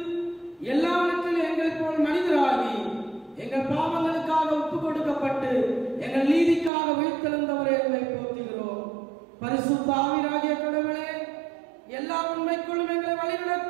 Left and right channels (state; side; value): drops out; left; at 6.7 s